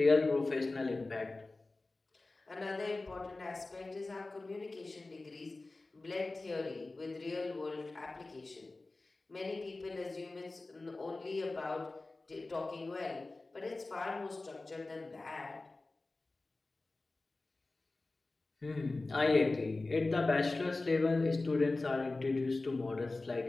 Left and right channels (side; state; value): right; quieter; 3.3 dB